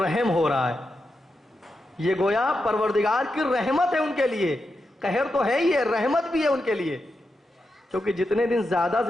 رحم ہو رہا ہے، یہ گویا پروردگار کی رحمت ہے ان کے لیے. قہر تو ہے ہی ہے، رحمت بھی ہے ان کے لیے، کیونکہ جتنے دن زیادہ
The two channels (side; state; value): both; normal; correlation 0.87